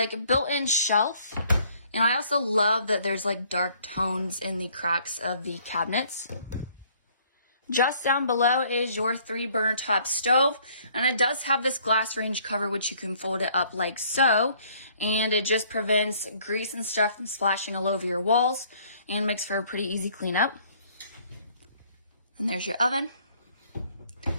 Built-in shelf. And I also love that there's like dark tones in the cracks of the cabinets. Just down below is your 3-burner top stove. And it does have this glass range cover, which you can fold it up like so. And it just prevents grease and stuff from splashing all over your walls and makes for a pretty easy cleanup. And there's your oven.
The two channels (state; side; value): inverted; both; correlation -0.61